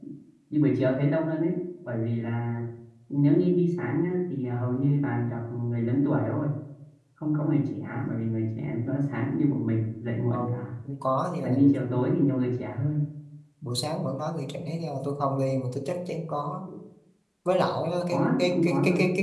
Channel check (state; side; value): identical; both; correlation 1.00